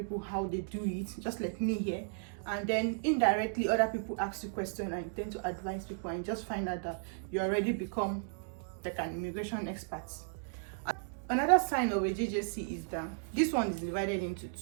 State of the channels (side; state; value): left; silent; digital silence